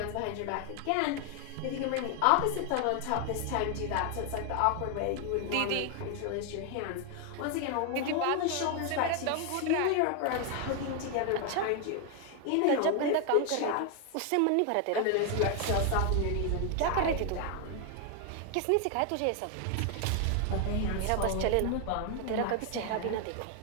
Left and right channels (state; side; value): different; both; correlation 0.01